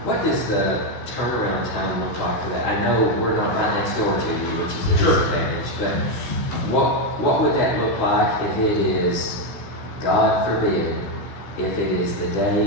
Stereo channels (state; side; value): late; right; 17 ms